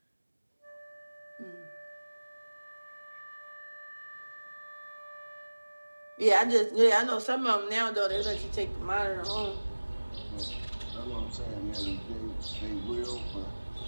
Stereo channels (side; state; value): both; inverted; correlation -1.00